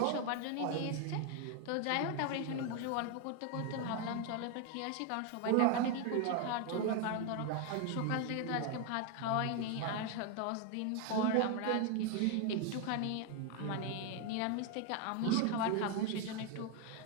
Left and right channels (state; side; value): different; both; correlation 0.01